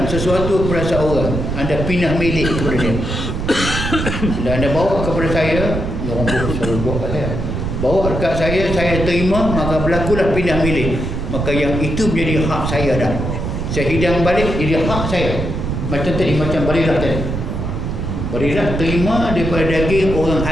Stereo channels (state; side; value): noise; right; rumble, 3 dB below the sound